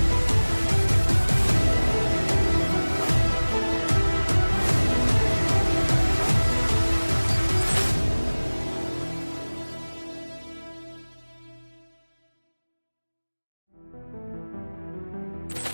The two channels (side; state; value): both; inverted; correlation -1.00